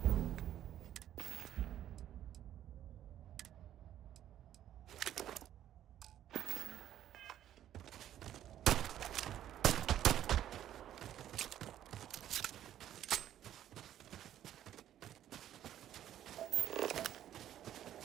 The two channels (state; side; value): quieter; left; 11.4 dB